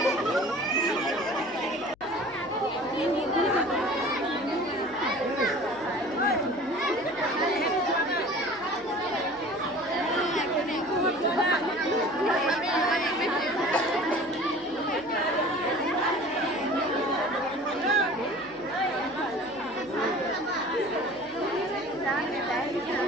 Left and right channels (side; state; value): left; noise; hum, 28 dB below the sound